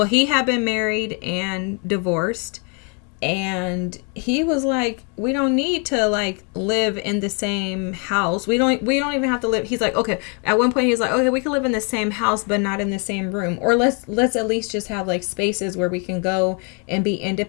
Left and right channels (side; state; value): right; quieter; 37.0 dB